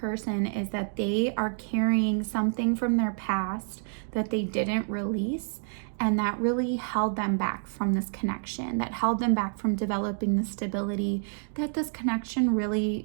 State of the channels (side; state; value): left; silent; digital silence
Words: is that they are carrying something from their past that they didn't release, and that really held them back from this connection, that held them back from developing the stability that this connection